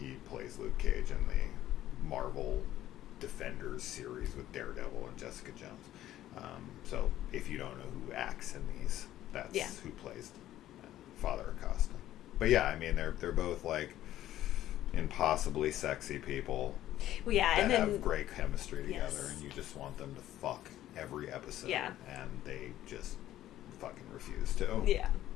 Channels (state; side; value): quieter; right; 13.3 dB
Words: plays Luke Cage in the Marvel Defenders series with Daredevil and Jessica Jones. So if you don't know who acts in these, that's who plays Father Acosta. But they're both like impossibly sexy people that have great chemistry together, and you just want them to fuck every episode, and they just fucking refuse to.